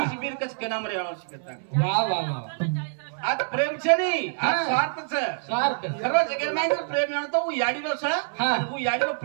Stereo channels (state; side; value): silent; left; 61 dB below the other